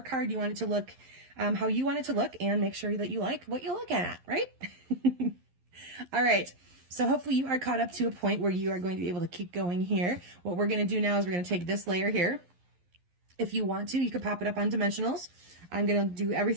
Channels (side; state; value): left; late; 11 ms